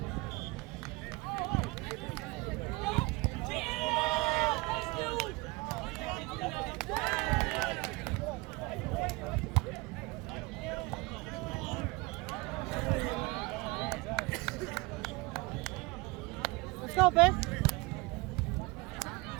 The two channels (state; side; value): quieter; left; 24.1 dB